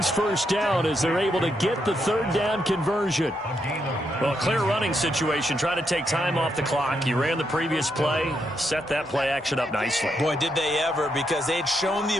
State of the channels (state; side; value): normal; both; correlation 0.80